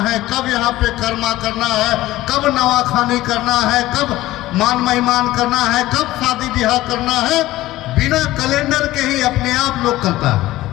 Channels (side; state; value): right; quieter; 16.5 dB